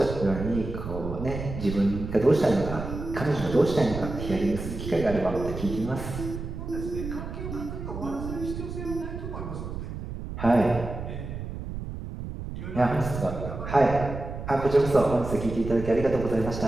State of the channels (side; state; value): right; noise; rumble, 7 dB below the sound